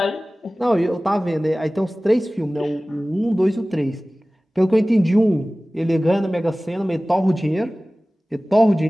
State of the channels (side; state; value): both; normal; correlation 0.98